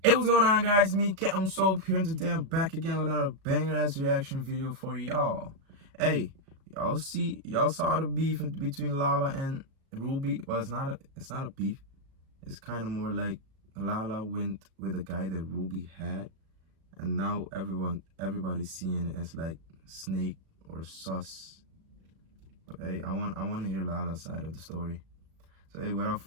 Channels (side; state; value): left; late; 37 ms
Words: Hey, what's going on, guys? Me, Captain Soap here, and today I'm back again with another banger-ass reaction video for y'all. Hey, y'all saw the beef between Lala and Ruby. Well, it's not a beef. It's kind of more like Lala went with a guy that Ruby had, and now everybody's seeing it as like snake or sus. But hey, I want to hear Lala's side of the story. So hey, without